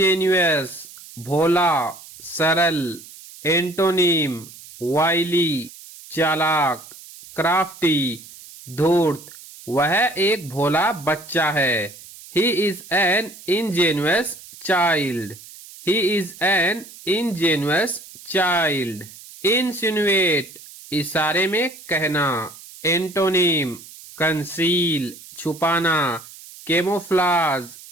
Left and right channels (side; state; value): right; noise; hiss, 18 dB below the sound